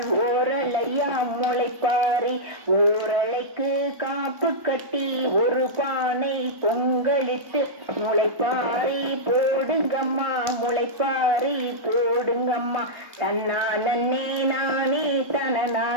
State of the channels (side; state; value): left; late; 1.5 ms